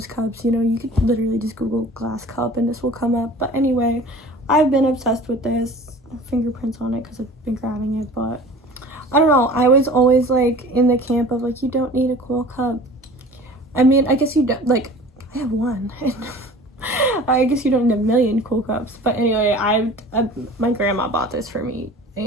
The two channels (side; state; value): both; normal; correlation 0.43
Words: cups, you know. You could literally just Google glass cup and this will come up. But anyway, I've been obsessed with this. Fingerprints on it because I've been grabbing it, but I don't know. I was always like in the camp of like, you don't need a cool cup. I mean, I guess you don't. Like, I have one. I guess you don't need a million cool cups. But anyway, my grandma bought this for me,